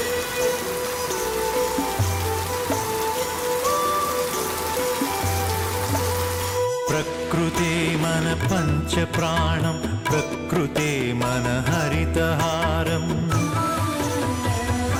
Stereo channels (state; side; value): identical; both; correlation 1.00